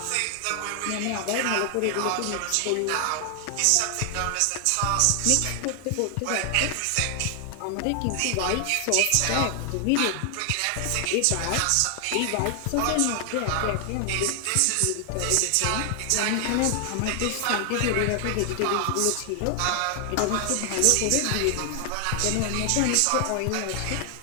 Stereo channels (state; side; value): different; both; correlation 0.00